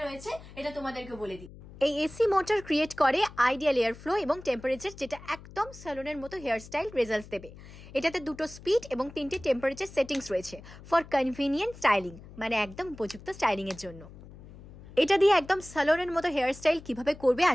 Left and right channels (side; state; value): left; noise; hum, 18 dB below the sound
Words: এটা তোমাদেরকে বলে দিই। এই এসি মোটর ক্রিয়েট করে আইডিয়াল এয়ার ফ্লো এবং টেম্পারেচার, যেটা একদম স্যালুনের মতো হেয়ার স্টাইল রেজাল্টস দেবে। এটাতে দুটো স্পিড এবং 3টে টেম্পারেচার সেটিংস রয়েছে ফর কনভিনিয়েন্ট স্টাইলিং, মানে একদম উপযুক্ত স্টাইলিং এর জন্য। এটা দিয়ে একদম স্যালুনের মতো হেয়ার স্টাইল কিভাবে করবে